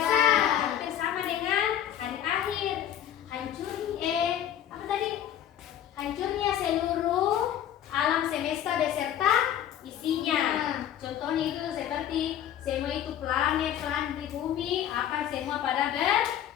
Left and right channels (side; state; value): right; quieter; 10.6 dB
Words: hampir sama dengan hari akhir. Hancurnya seluruh alam semesta beserta isinya. Contohnya itu seperti semua itu planet di bumi akan semua pada